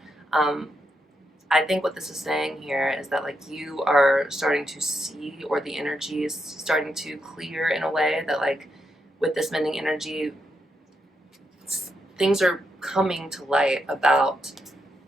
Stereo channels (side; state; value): both; normal; correlation 0.82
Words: I think what this is saying here is that like you are starting to see, or the energy is starting to clear in a way that like with this mending energy, things are coming to light about